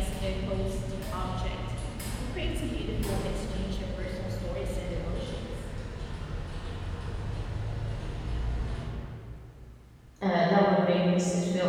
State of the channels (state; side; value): identical; both; correlation 1.00